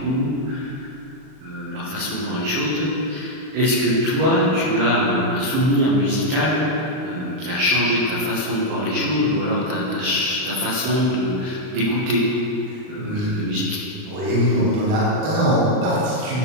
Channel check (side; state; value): left; late; 38 ms